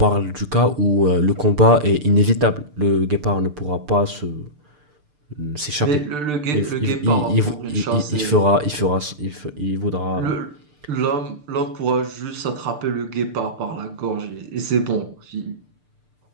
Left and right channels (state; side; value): late; left; 6.7 ms